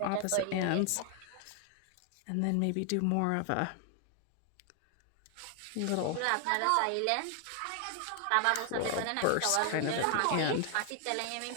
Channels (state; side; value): different; both; correlation 0.00